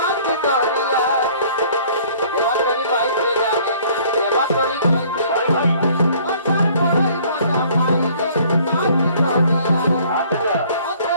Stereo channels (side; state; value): both; inverted; correlation -0.56